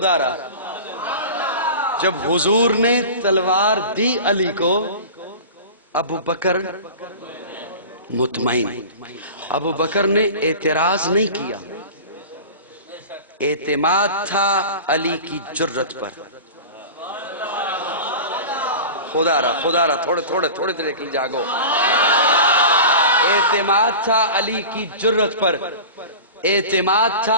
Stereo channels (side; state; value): both; inverted; correlation -0.34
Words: را۔ جب حضور نے تلوار دی علی کو ابو بکر مطمئن، ابو بکر نے اعتراض نہیں کیا، اعتماد تھا علی کی جرت پر۔ خدا را تھوڑے دیر کے لیے جاگو۔ اعتماد تھا علی کی جرت پر، اعتماد